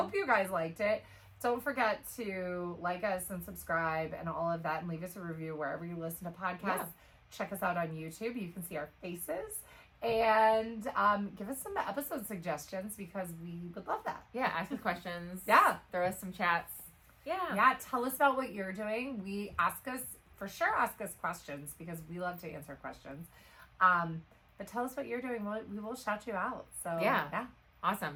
you guys liked it. Don't forget to like us and subscribe and all of that and leave us a review wherever you listen to podcasts. Yeah. Check us out on YouTube. You can see our faces. And give us some episode suggestions because we would love that. Yeah. Ask us questions. Yeah. Throw us some chats. Yeah. Yeah. Tell us about what you're doing. Ask us questions because we love to answer questions. But tell us what you're doing. We will shout you out. So yeah.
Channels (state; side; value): identical; both; correlation 1.00